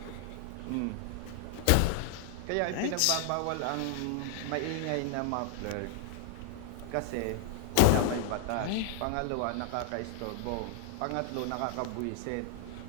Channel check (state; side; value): different; both; correlation 0.00